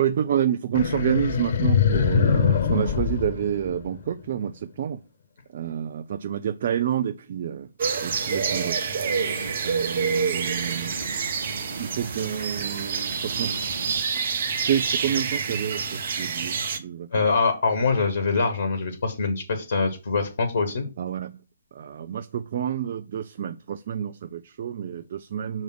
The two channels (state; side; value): inverted; both; correlation -0.57